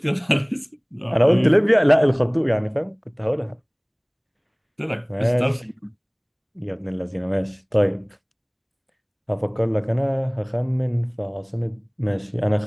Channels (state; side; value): identical; both; correlation 1.00